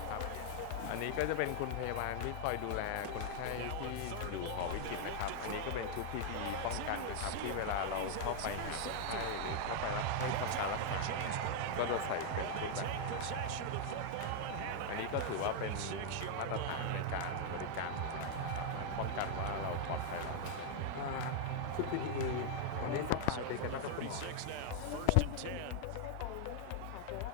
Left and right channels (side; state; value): both; different; correlation 0.00